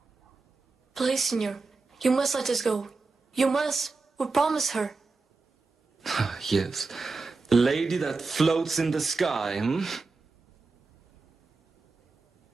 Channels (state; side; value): quieter; left; 4.0 dB